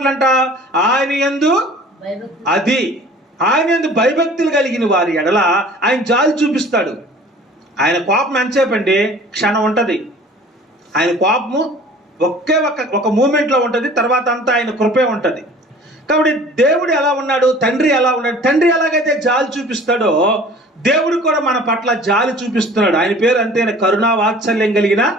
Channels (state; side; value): normal; both; correlation 0.47